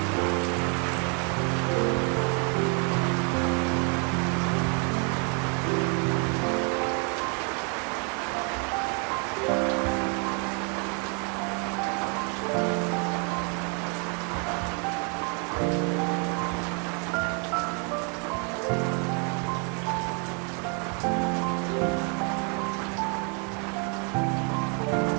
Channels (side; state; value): left; quieter; 36.7 dB